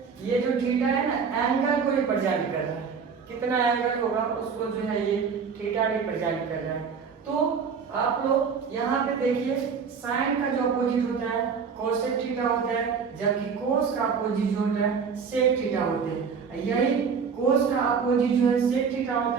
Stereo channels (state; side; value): quieter; left; 6.0 dB